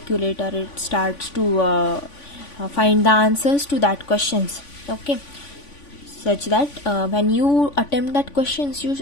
or it starts to find the answers to that questions, okay, such that when you attempt that questions,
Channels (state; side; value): late; right; 3.5 ms